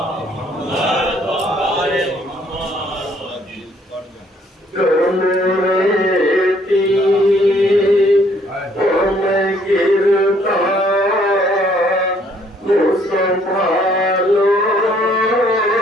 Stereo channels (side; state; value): both; normal; correlation 0.64